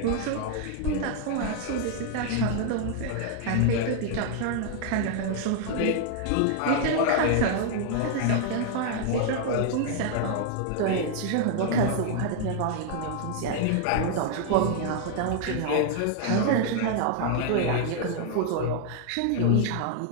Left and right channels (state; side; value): different; both; correlation 0.00